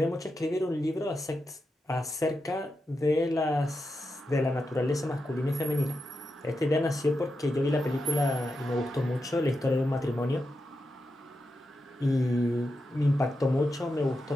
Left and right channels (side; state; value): both; normal; correlation 0.88